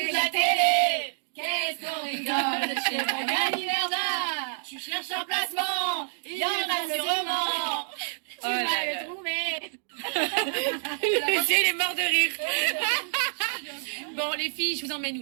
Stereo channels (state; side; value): silent; left; digital silence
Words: la télé. Qu'est-ce qu'on rigole chez Magali Berda? Tu cherches un placement, il y en a sûrement. Tu vas le trouver. Il est mort de rire. Bon, les filles, je vous emmène où